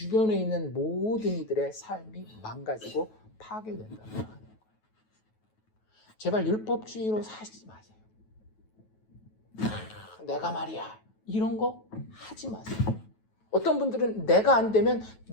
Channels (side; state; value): right; late; 9.3 ms